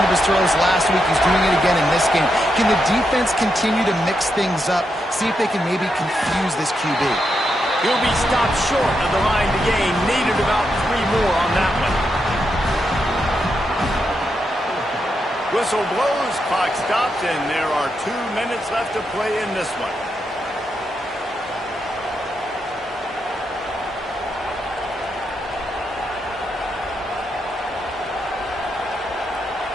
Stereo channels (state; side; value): normal; both; correlation 0.83